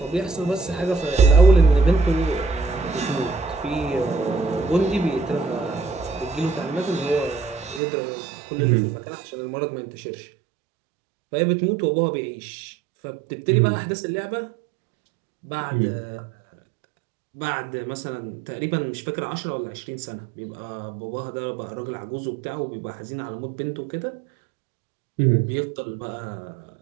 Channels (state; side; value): drops out; left; at 7.8 s